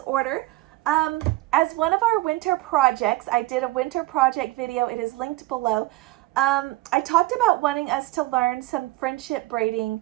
As one of our winter projects, I did a winter project video. It is linked below. I talked about wanting us to learn some friendship braiding,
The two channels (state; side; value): quieter; left; 19.1 dB